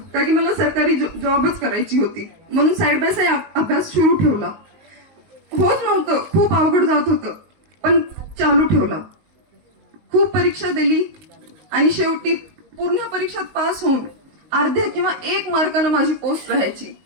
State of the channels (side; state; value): left; late; 19 ms